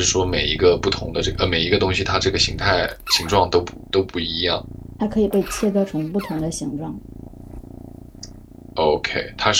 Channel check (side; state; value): both; identical; correlation 1.00